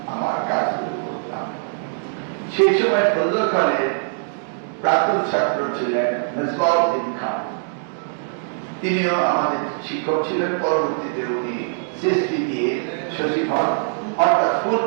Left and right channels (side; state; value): left; silent; digital silence